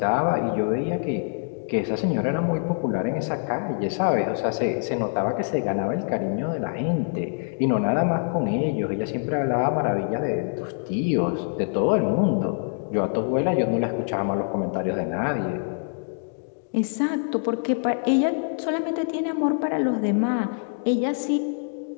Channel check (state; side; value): silent; right; digital silence